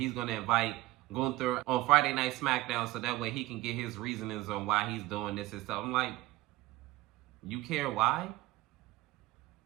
going to invite Gunther on Friday Night SmackDown so that way he can get his reasonings on why he's doing this and stuff. I'm like, you care why?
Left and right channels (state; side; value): quieter; left; 18.3 dB